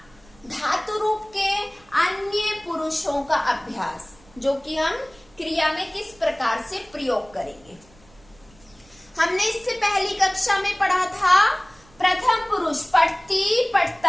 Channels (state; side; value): noise; right; rumble, 28 dB below the sound